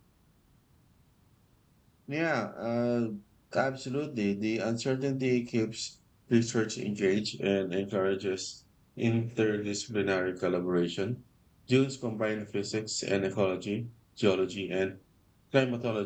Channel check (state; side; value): identical; both; correlation 1.00